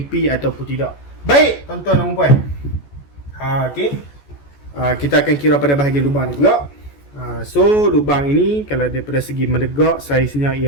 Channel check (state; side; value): late; right; 14 ms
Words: ataupun tidak. Baik tuan-tuan dan puan, okey, kita akan kira pada bahagian lubang ni pula. So lubang ini kalau daripada segi menegak saiznya